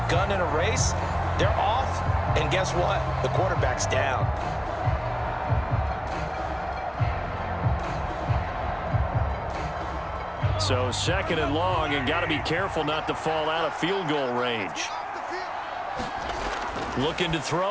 gun in a race. They're off, and guess what? The quarterback's down. So 2nd and long, and got to be careful not to fall out of field goal range. Looking to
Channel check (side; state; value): both; identical; correlation 1.00